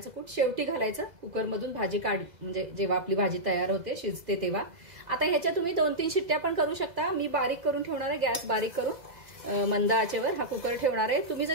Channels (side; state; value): left; late; 2.0 ms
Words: कूट शेवटी घालायचं। कुकरमधून भाजी म्हणजे जेव्हा आपली भाजी तयार होते, शिजते तेव्हा। आता ह्याच्या तुम्ही 2-3 शिट्ट्या पण करू शकता। मी बारीक करून ठेवणार आहे, गॅस बारीक करून मंद आचेवर हा कुकर ठेवणार आहे। तुम्ही जर